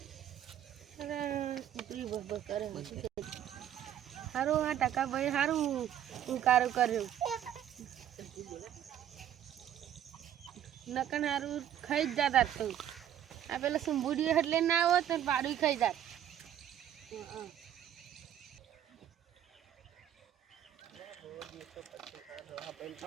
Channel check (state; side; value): quieter; left; 10.8 dB